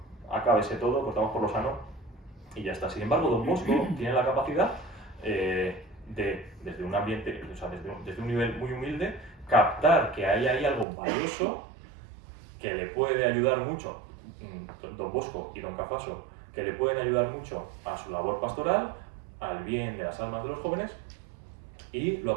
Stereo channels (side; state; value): left; drops out; at 10.9 s